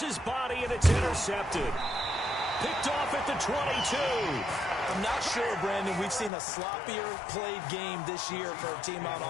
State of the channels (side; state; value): right; drops out; at 6.3 s